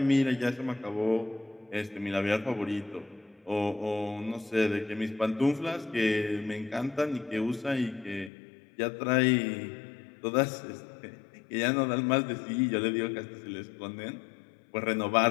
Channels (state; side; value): drops out; right; at 8.3 s